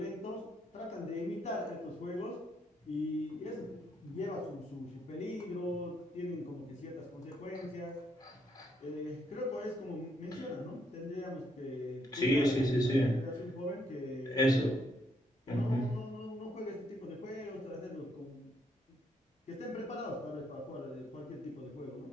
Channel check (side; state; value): both; normal; correlation 0.74